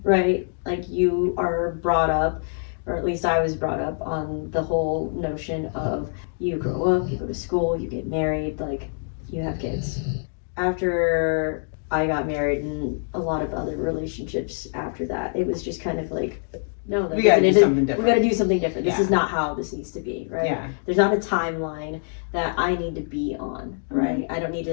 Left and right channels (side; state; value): right; silent; digital silence